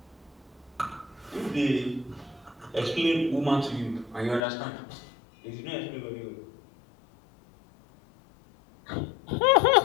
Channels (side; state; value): right; drops out; at 4.4 s